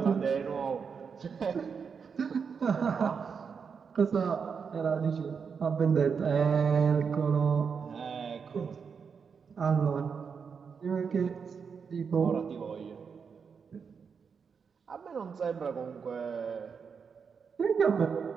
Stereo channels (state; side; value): quieter; left; 6.1 dB